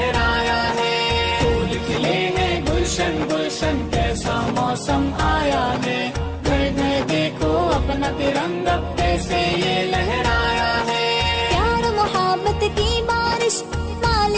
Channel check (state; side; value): identical; both; correlation 1.00